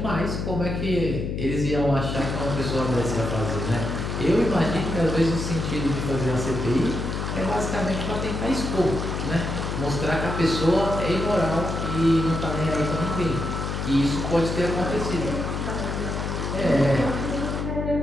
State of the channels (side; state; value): left; noise; hum, 3 dB below the sound